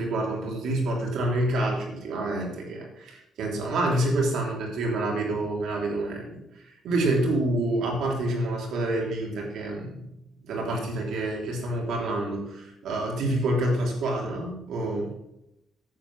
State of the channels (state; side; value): normal; both; correlation 0.67